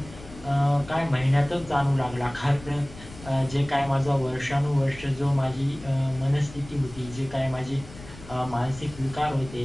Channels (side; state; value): left; noise; rumble, 17 dB below the sound